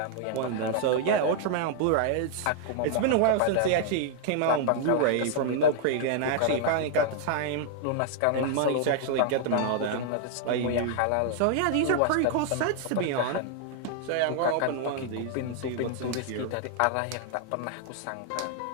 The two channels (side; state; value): both; different; correlation 0.00